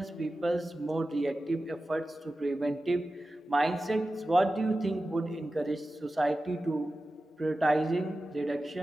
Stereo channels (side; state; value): both; normal; correlation 0.94